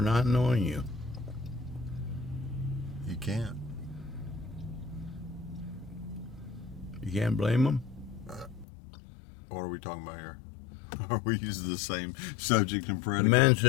knowing you? You can't. You can't blame him? What are we talking about here? Are we using the same subject and The predicate? man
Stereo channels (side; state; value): right; drops out; at 8.7 s